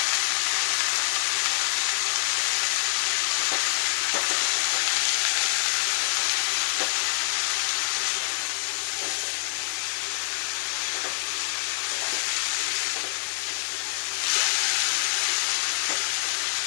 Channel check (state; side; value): silent; right; digital silence